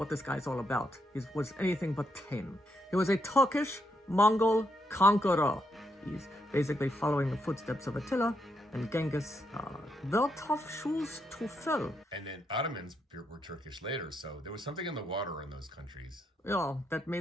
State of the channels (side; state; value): both; normal; correlation 0.79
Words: this guy's all about. He was anything but tame. He was a Turkish Mongol conqueror. He's basically following the footsteps of Attila and Genghis. They're tough shoes to fill. And then Ottomans were Turkish later, so there was something in the water in those countries. Yeah, that